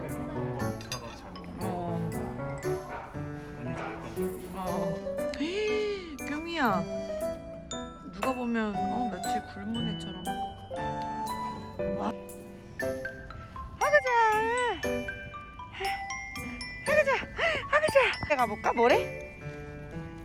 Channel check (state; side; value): identical; both; correlation 1.00